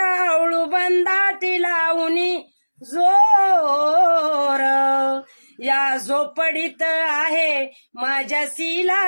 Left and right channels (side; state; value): both; inverted; correlation -1.00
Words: बंदाटी लावणी जोर या झोपडीत आहे माझ्या